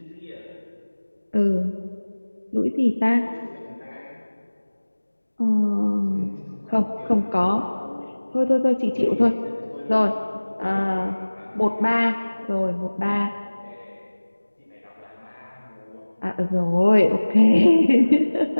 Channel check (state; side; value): inverted; both; correlation -1.00